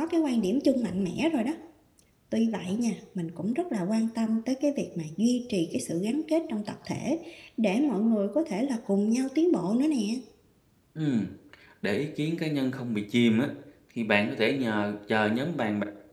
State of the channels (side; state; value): both; identical; correlation 1.00